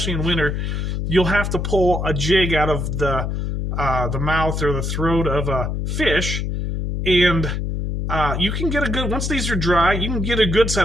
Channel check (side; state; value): left; noise; hum, 2 dB below the sound